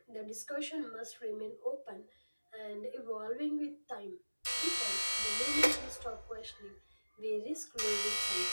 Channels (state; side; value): inverted; both; correlation -1.00